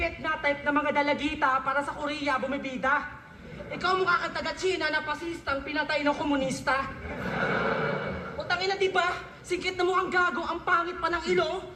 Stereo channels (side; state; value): both; identical; correlation 1.00